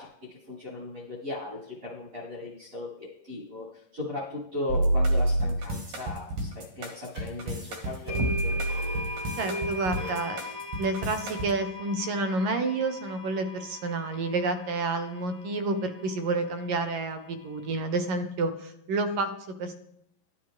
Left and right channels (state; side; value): late; left; 11 ms